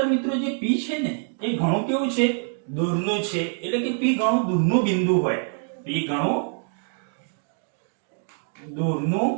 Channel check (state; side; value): silent; left; 59 dB below the other